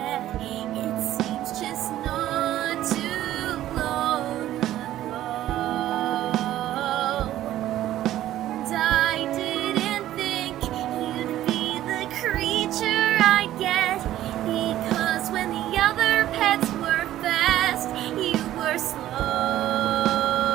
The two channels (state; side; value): quieter; left; 13.4 dB